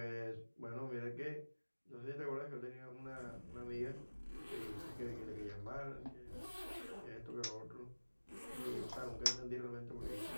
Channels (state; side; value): inverted; both; correlation -1.00